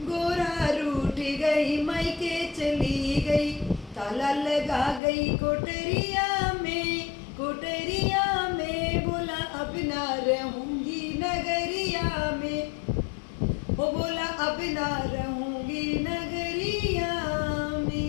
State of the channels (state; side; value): drops out; right; at 5.0 s